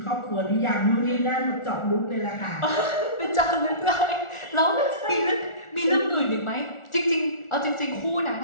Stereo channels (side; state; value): right; late; 1.4 ms